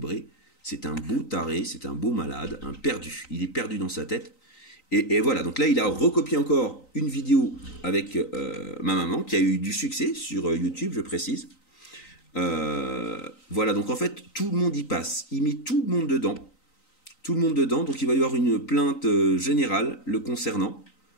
C'est un beau taré, c'est un beau malade, un perdu. Il est perdu dans sa tête. Et voilà, donc là, il a recopié encore une vidéo avec ma maman, qui a eu du succès sur YouTube, je précise. Voilà, donc en fait, tout le monde y passe. Il met tout le monde dedans. Tout le monde dedans, donc il va y avoir une plainte générale le concernant.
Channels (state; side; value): late; right; 3.9 ms